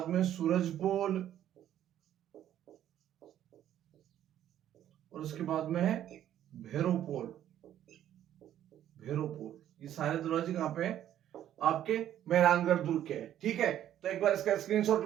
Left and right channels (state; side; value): quieter; left; 11.4 dB